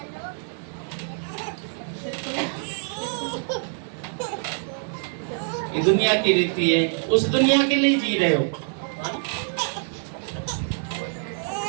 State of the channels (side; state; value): left; silent; digital silence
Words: ये दुनिया की रीति है, उस दुनिया के लिए जी रहे हो।